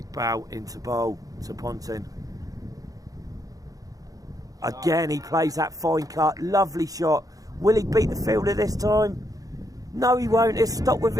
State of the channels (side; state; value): left; late; 0.17 ms